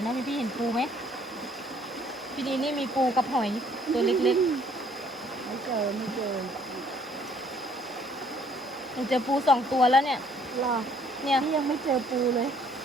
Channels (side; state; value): both; normal; correlation 0.62